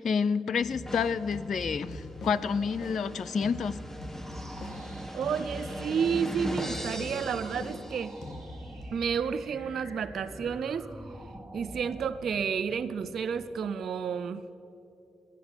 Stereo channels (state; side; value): normal; both; correlation 0.74